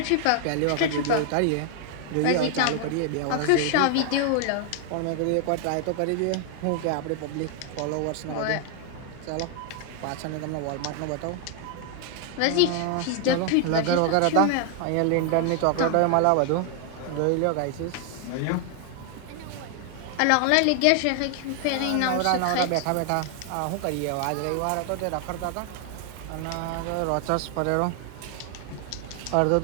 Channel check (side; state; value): both; different; correlation 0.00